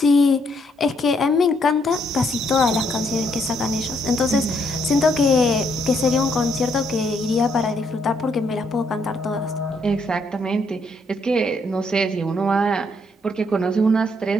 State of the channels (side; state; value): both; normal; correlation 0.72